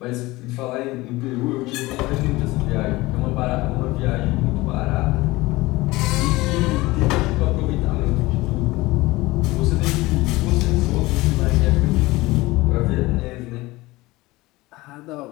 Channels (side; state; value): right; quieter; 20.3 dB